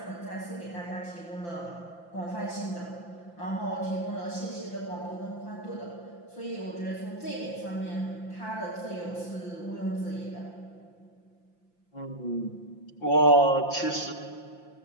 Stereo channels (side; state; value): right; late; 5.8 ms